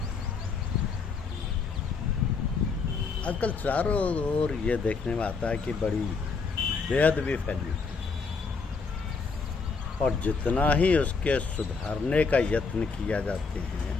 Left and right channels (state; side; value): quieter; right; 4.8 dB